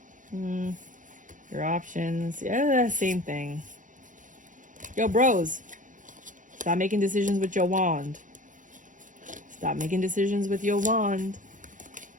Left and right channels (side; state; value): left; late; 0.37 ms